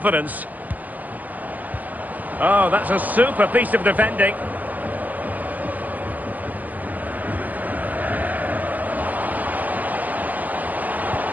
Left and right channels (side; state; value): left; late; 0.080 ms